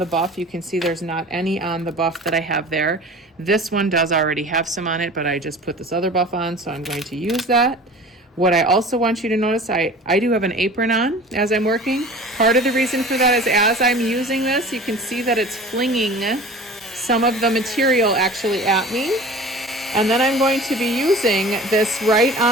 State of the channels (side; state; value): both; normal; correlation 0.40